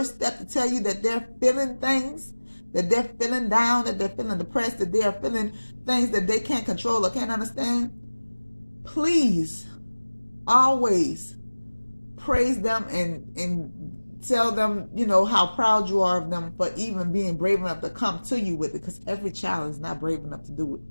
step to tell you that they're feeling things, that they're feeling down, that they're feeling depressed, that they are feeling things that they can't control or can't understand, please always praise them and tell them, how proud you are of them for even being brave enough to come to you with it, because every child is not brave enough to do it.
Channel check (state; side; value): inverted; both; correlation -1.00